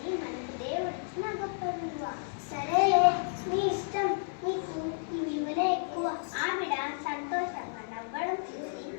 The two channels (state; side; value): silent; right; 56 dB below the other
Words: మనకు దేవుడిచ్చిన గొప్ప విలువ. సరే, నీ ఇష్టం. నీకు ఈ విలువనే ఎక్కువ. ఆవిడ సంతోషంగా నవ్వడం చూసి